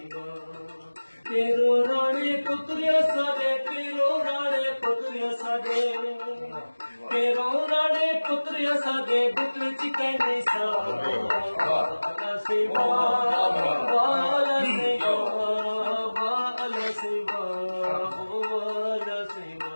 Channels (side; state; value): both; inverted; correlation -1.00